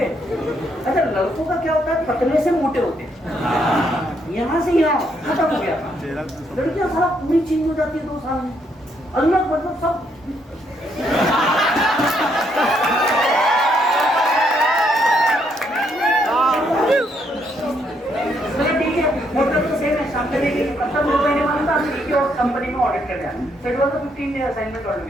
अच्छा, लड़कों का क्या होता है, पतले से मोटे होते हैं, यहाँ से यहाँ खत्म हो गया। लड़कियां सारा पूरी चेंज हो जाती है 2 साल में, अलग मतलब सब। कंपनी में ऑडिट करने आया, so it was a 15-day assignment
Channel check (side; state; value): both; normal; correlation 0.73